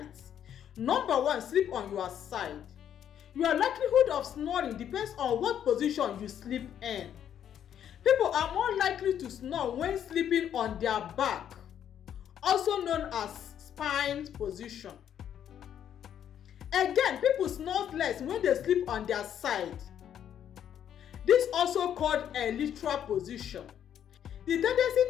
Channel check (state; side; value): quieter; right; 9.6 dB